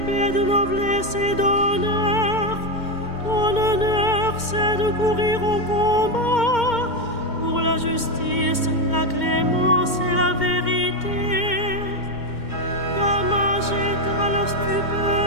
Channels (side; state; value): right; late; 2.2 ms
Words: forçait de courir au combat pour la justice, la clémence et la vérité. Gama jette à la